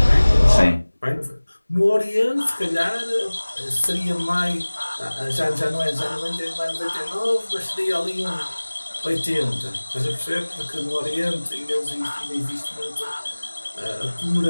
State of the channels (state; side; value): inverted; both; correlation -1.00